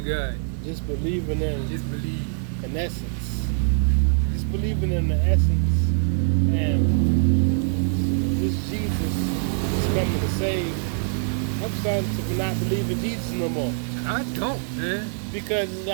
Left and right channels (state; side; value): silent; left; digital silence